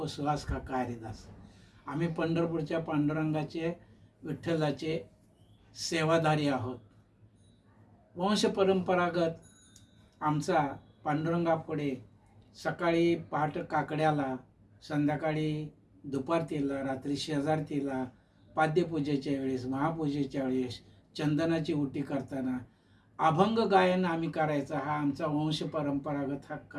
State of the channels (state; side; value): identical; both; correlation 1.00